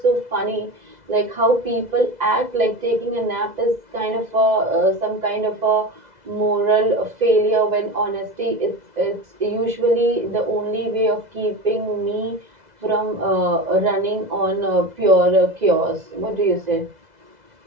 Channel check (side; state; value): left; late; 2.0 ms